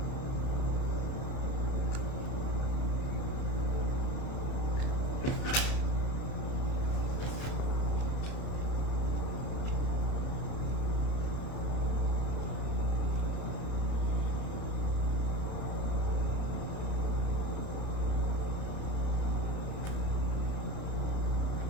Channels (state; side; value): late; right; 31 ms